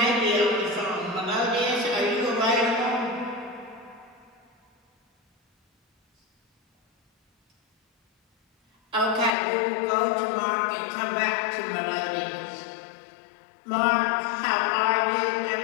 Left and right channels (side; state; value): right; drops out; at 9.3 s